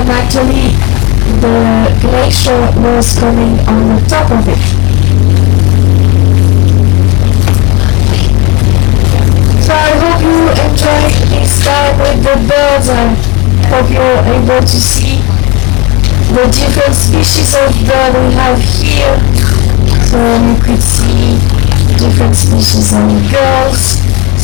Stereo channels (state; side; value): quieter; right; 23.7 dB